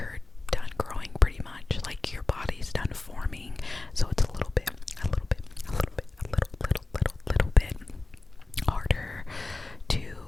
done growing pretty much, like your body's done forming, so it's a little bit harder to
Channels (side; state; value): right; quieter; 3.2 dB